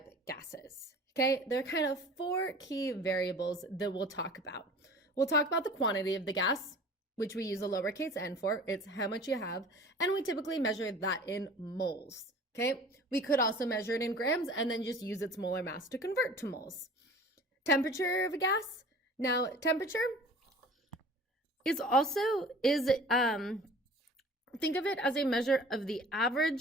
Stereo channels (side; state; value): both; normal; correlation 0.44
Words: gases? Okay, there are kind of four key variables that we'll talk about. We'll talk about the quantity of the gas, which we use a lowercase n for. It's how much you have, and we typically measure that in moles, okay? We could also measure it in grams and then just use its molar mass to convert to moles. Temperature of a gas. Now, temperature is think of it as a measure of the